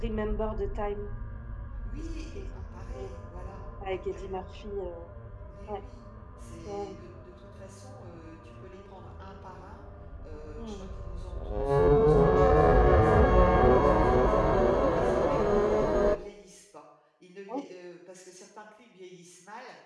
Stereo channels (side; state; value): both; identical; correlation 1.00